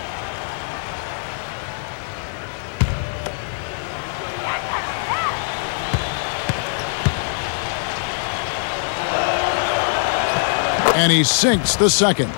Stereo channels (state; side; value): silent; right; 63 dB below the other